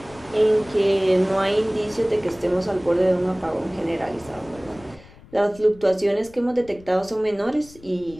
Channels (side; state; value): left; noise; rumble, 23 dB below the sound